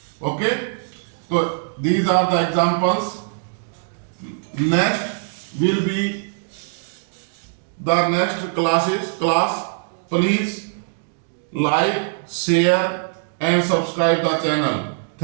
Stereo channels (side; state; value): left; silent; digital silence